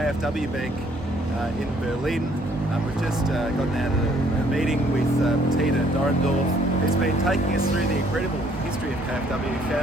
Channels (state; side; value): normal; both; correlation 0.63